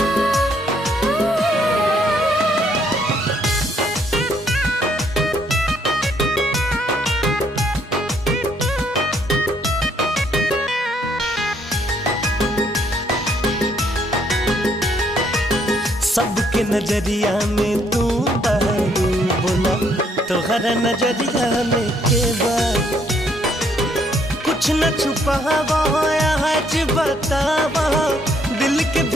सबके नजरिया में तू बहरू बोला तोहरा नजरिया में के बा कुछ न छुपावा आज बतावा दिल के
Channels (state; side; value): normal; both; correlation 0.69